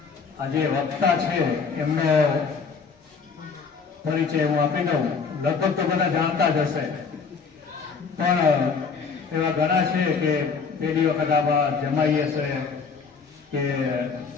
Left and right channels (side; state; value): right; quieter; 5.4 dB